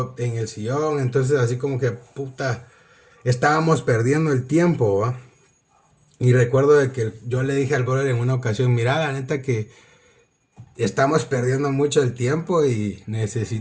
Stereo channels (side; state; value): both; identical; correlation 1.00